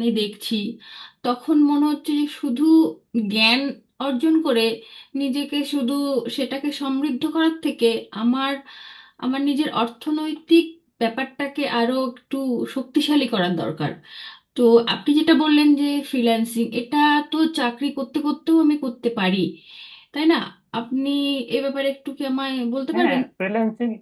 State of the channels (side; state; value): both; identical; correlation 1.00